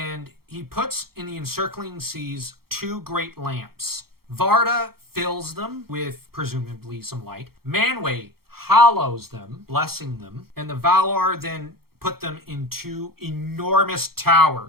he puts in the encircling seas 2 great lamps. Varda fills them with presumably some light. Manwë hallows them, blessing them, and the Valar then put them in 2 enormous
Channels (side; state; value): left; late; 0.94 ms